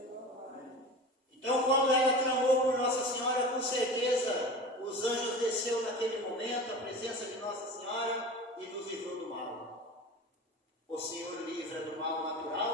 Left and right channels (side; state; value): both; normal; correlation 0.34